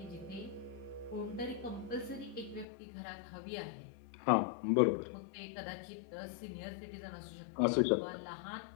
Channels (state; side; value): drops out; right; at 2.7 s